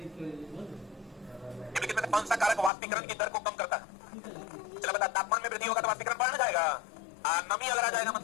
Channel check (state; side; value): drops out; right; at 2.7 s